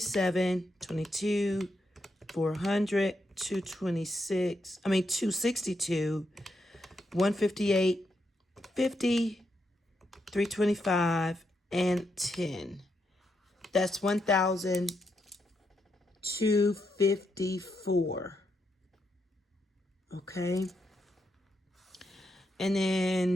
22, 400, 226, 262, 158, 50, 325, and 10. That's 1,254. Okay. And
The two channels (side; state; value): both; normal; correlation 0.81